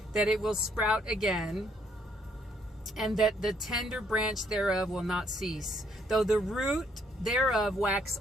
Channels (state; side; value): normal; both; correlation 0.69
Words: that it will sprout again, and that the tender branch thereof will not cease, though the root thereof wax